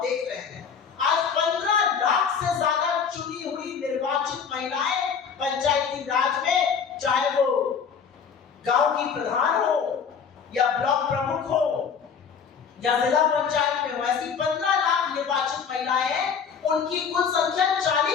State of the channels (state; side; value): quieter; right; 6.6 dB